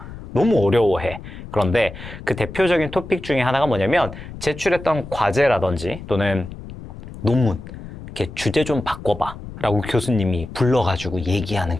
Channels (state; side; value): noise; left; rumble, 13 dB below the sound